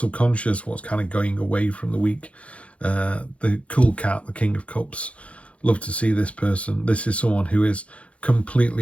what's kind of going away from the week. The cool cat, the King of Cups. Love to see this person. This is someone who is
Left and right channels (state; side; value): late; right; 0.063 ms